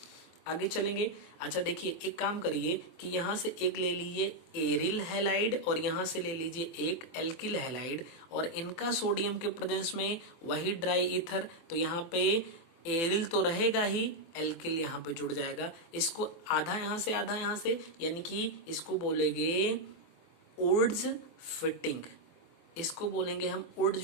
आगे चलेंगे। अच्छा देखिए, एक काम करिए कि यहां से एक ले लीजिए एरिल हैलाइड और यहां से ले लीजिए एक एल्किल हैलाइड, और इनका सोडियम के प्रेजेंस में वही ड्राई ईथर, तो यहाँ पे एरिल तो रहेगा ही, एल्किल यहाँ पे जुड़ जाएगा। इसको आधा यहां से आधा यहां से, यानी कि इसको बोलेंगे उड्स फिटिंग, इसको बोलेंगे हम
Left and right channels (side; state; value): right; late; 24 ms